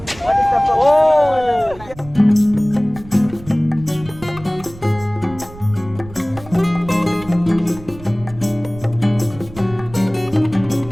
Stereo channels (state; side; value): noise; right; rumble, 18 dB below the sound